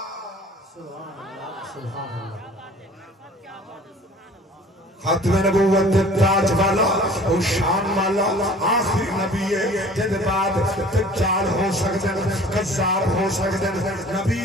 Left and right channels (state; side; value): normal; both; correlation 0.48